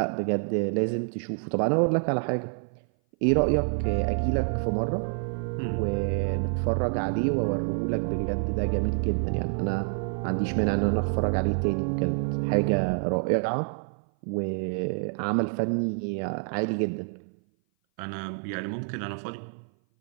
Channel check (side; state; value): left; silent; 58 dB below the other